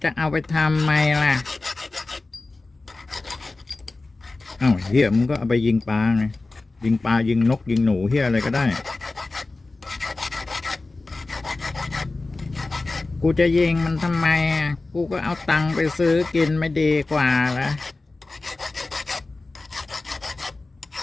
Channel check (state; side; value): quieter; right; 3.3 dB